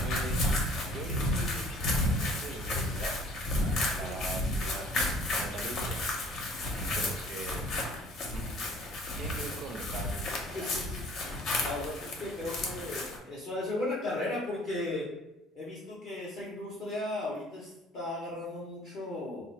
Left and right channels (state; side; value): normal; both; correlation 0.53